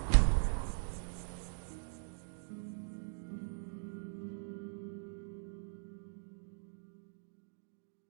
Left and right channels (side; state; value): left; silent; digital silence